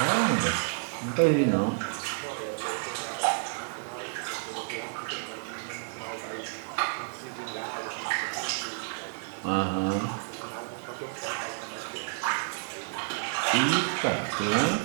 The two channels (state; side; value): silent; left; digital silence